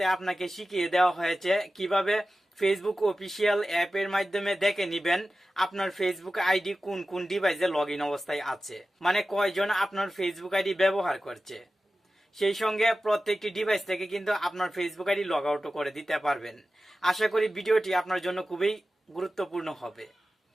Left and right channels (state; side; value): normal; both; correlation 0.94